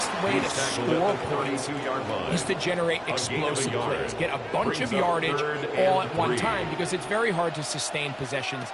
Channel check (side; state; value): both; identical; correlation 1.00